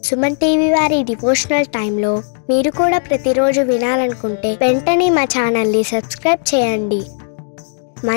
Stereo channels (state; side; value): silent; right; digital silence